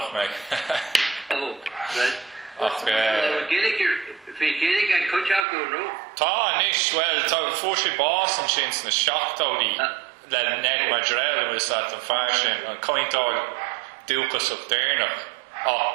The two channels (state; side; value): drops out; left; at 5.5 s